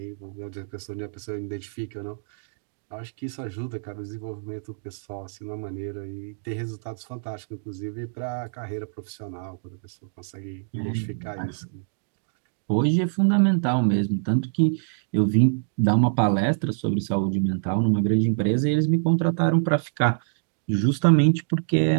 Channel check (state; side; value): silent; left; digital silence